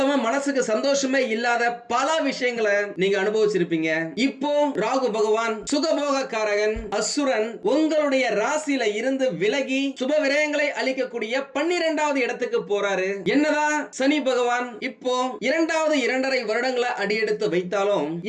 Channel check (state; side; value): identical; both; correlation 1.00